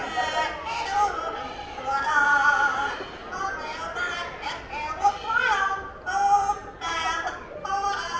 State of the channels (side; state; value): both; identical; correlation 1.00